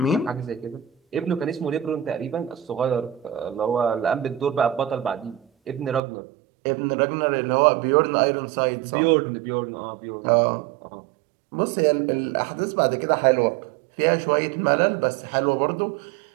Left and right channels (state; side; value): drops out; left; at 6.0 s